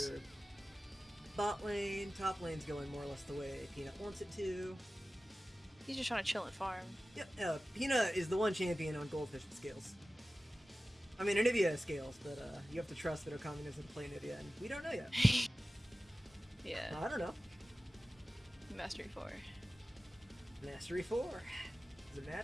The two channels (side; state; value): both; normal; correlation 0.96